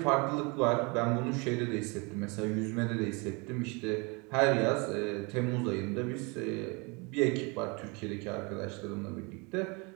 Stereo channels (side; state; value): left; quieter; 29.5 dB